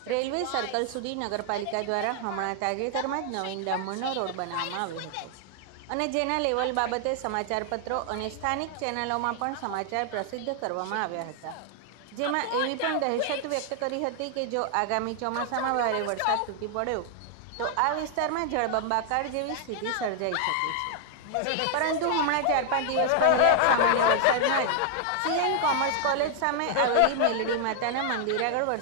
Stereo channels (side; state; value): both; different; correlation 0.00